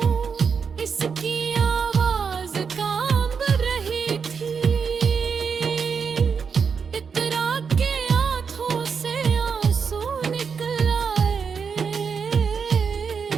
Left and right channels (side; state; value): left; quieter; 6.0 dB